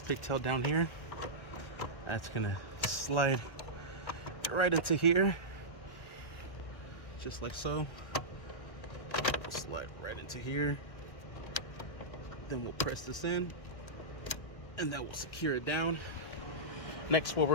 down here. That's going to slide right into here, just like so. We'll slide right into here. Then we'll press this in, and that will secure it down. Next, what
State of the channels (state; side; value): late; right; 1.6 ms